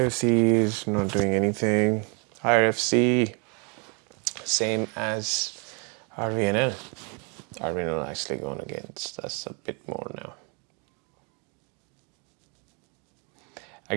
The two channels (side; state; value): left; quieter; 34.9 dB